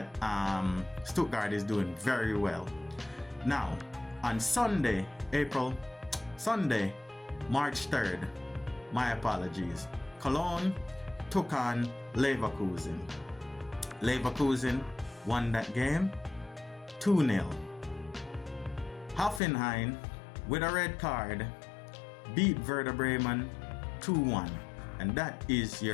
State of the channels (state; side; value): drops out; right; at 19.4 s